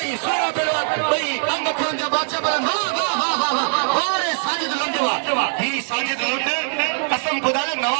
सूरा पहलवान भई अंग खरन जा बादशाह पहलवान वाह अरे साजिद लुंडवा ही साजिद लुंड कसम खुदा जो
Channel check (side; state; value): left; silent; 59 dB below the other